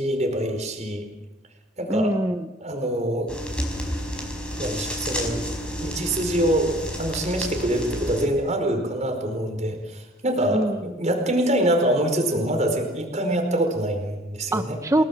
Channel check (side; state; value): both; normal; correlation 0.52